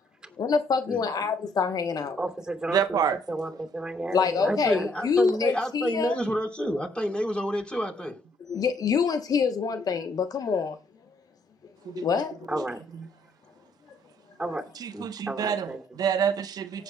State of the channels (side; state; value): both; normal; correlation 0.68